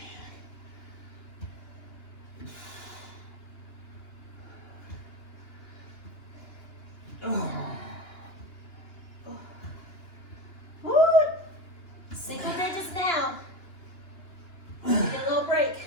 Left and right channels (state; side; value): late; right; 2.9 ms